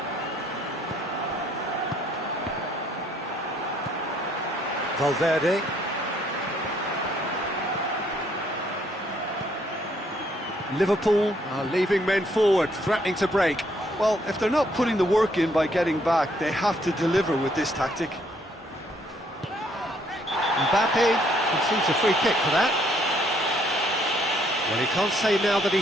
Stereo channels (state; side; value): normal; both; correlation 0.68